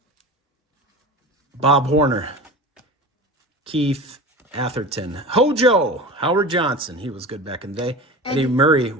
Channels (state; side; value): normal; both; correlation 0.32